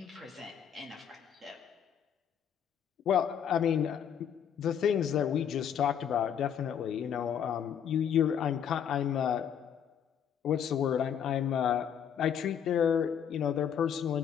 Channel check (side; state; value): right; quieter; 8.5 dB